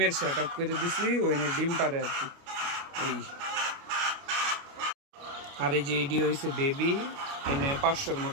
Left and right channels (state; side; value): late; left; 29 ms